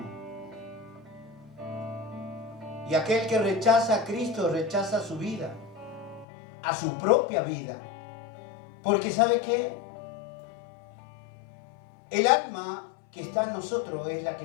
Y aquel que rechaza a Cristo, rechaza su vida, a su propia vida. Porque ¿sabe qué? El alma que está en nosotros es la que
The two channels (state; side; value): drops out; right; at 6.2 s